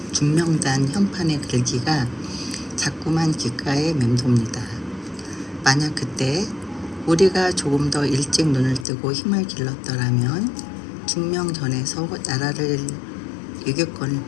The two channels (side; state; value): right; drops out; at 8.8 s